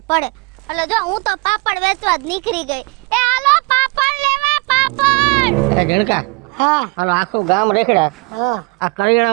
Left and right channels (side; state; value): left; quieter; 28.9 dB